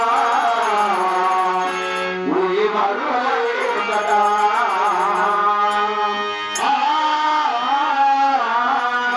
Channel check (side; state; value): both; identical; correlation 1.00